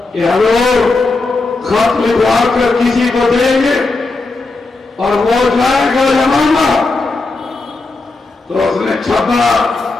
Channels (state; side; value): quieter; right; 3.5 dB